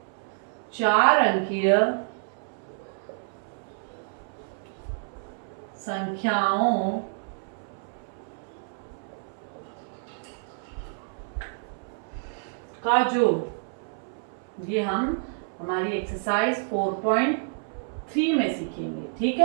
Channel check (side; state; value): left; silent; 59 dB below the other